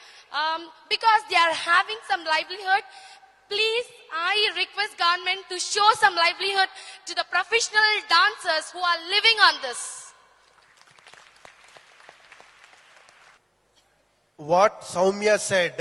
because they are having some livelihood. Please, I request government to show some livelihood to the professional dancers who are living on this. What Soumya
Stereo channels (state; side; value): identical; both; correlation 1.00